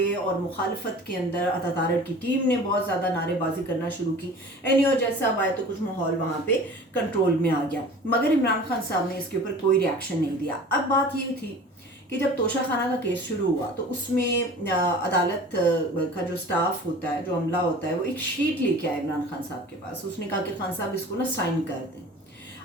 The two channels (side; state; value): both; normal; correlation 0.41